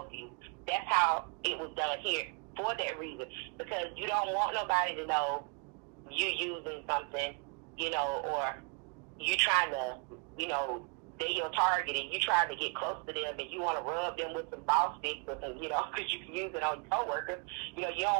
you. That's how it was done here, for that reason, because you don't want nobody to know you're using something, you know, or you trying to, you know, they're your target and you trying to get close to them and you want to rub them with some ball sticks or some, you know, because you can use it on your coworkers. You know, you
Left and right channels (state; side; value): quieter; left; 37.3 dB